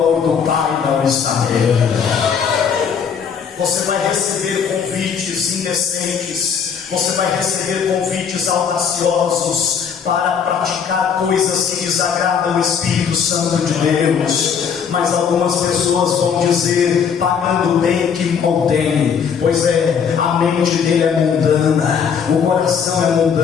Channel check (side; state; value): right; quieter; 7.0 dB